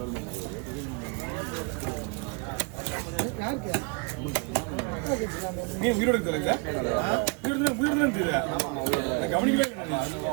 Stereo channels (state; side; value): quieter; left; 33.0 dB